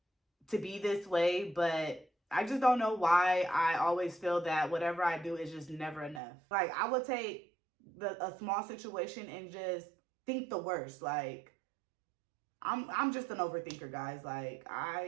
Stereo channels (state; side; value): drops out; left; at 6.2 s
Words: to be this way, but I just don't know why I always feel that whatever I do is just never enough. Like, I would take a small situation and just think the worst. Like, I'm just an overthinker, guys. Like,